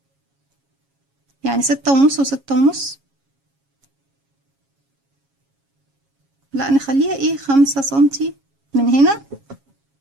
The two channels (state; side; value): late; left; 7.3 ms